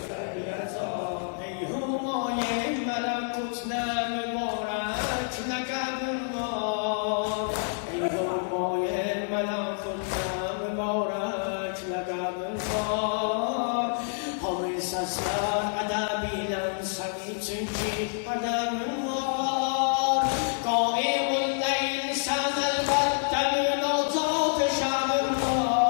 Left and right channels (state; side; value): silent; right; digital silence